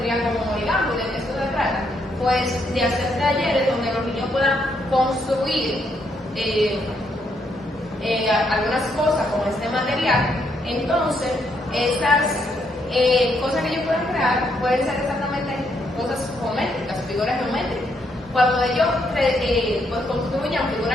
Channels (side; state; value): both; normal; correlation 0.75